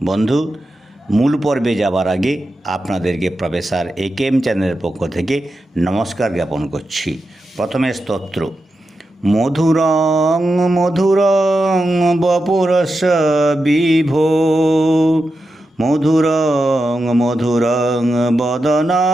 বন্ধু, মূল পর্বে যাবার আগে আপনাদেরকে প্রফেসর একেএম চ্যানেলের পক্ষ থেকে নমস্কার জ্ঞাপন করছি। প্রথমে স্তোত্র। মধুরং মধুরং বপুরস্য বিভো, মধুরং মধুরং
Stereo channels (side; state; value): both; normal; correlation 0.89